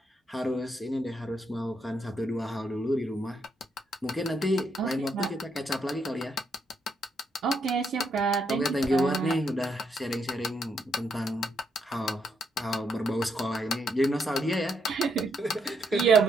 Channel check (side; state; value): both; normal; correlation 0.77